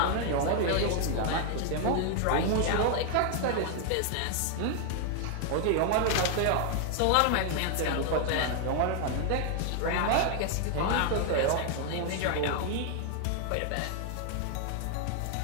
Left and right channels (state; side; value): different; both; correlation 0.00